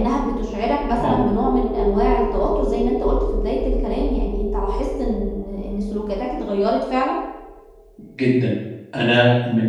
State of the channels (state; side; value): identical; both; correlation 1.00